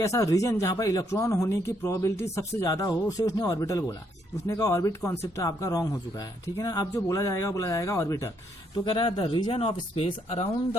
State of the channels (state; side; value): normal; both; correlation 0.73